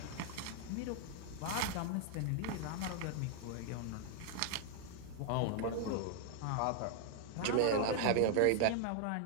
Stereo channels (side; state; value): both; different; correlation 0.00